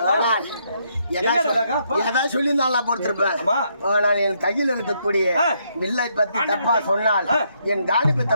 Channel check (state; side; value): inverted; both; correlation -0.74